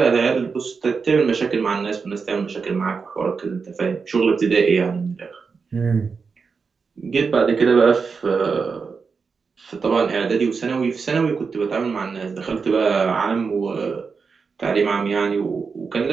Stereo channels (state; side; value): quieter; left; 5.2 dB